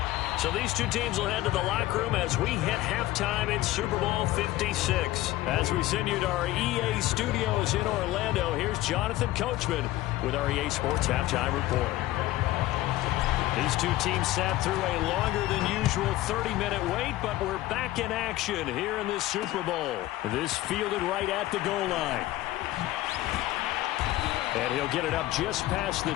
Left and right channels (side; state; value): right; quieter; 16.3 dB